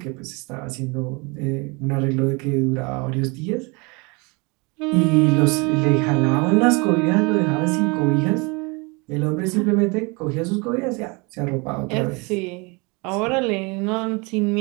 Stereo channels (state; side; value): quieter; left; 28.6 dB